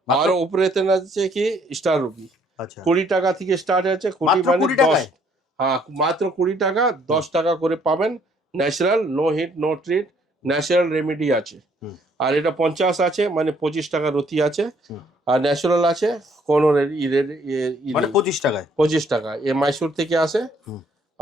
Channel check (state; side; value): normal; both; correlation 0.64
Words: আর উপরেতন আছে কি স্টার রুবি, আচ্ছা। 20 টাকা থেকে স্টার্ট আছে, 20 মাত্র মানে 20 টাকায়? 10। হ্যাঁ মাত্র 20 টাকা, 10 টাকা করে পাবেন। Natural no heat no treat, natural remedy আছে। আর এটা 50 আছে মানে 25 টাকার রতি আছে। আর ন্যাচারাল আছে কোনো মানে 25 টাকায়? 25 টাকা। এ মাইসোর থেকে আসে,